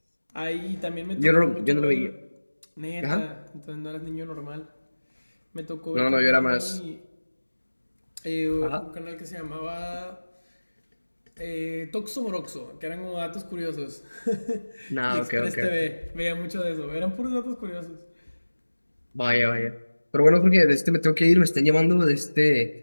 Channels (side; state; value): both; inverted; correlation -1.00